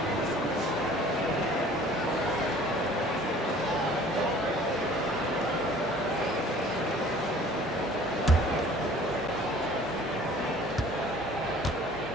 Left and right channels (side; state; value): left; noise; hum, 21 dB below the sound